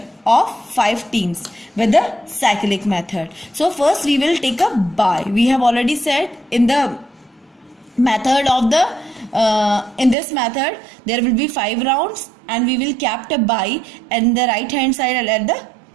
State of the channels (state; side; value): drops out; left; at 10.2 s